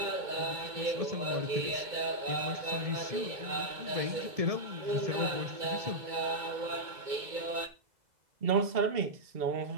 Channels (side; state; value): left; late; 2.2 ms